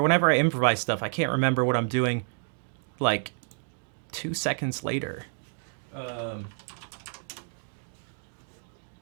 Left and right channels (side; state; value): left; silent; 58 dB below the other